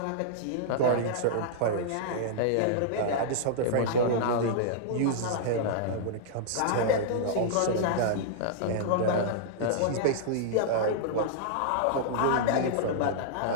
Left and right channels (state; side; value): different; both; correlation -0.02